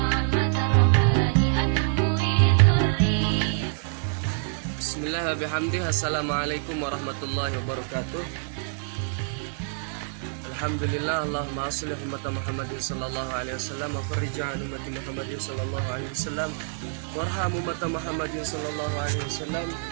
Bismillahirrahmanirrahim. Assalamualaikum warahmatullahi wabarakatuh. Alhamdulillah, Allahumma shalli ala Muhammadin sallallahu alaihi wasallam wa farij an ummati Muhammadin sallallahu alaihi wasallam warham ummati Muhammadin sallallahu alaihi wasallam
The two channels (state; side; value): silent; left; digital silence